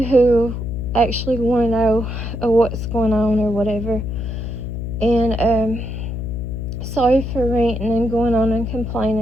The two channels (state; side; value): noise; left; hum, 5 dB below the sound